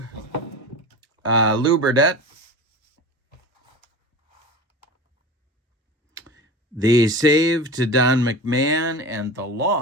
Lou Burdett. The save to Don McMahon, and the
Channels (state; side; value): normal; both; correlation 0.31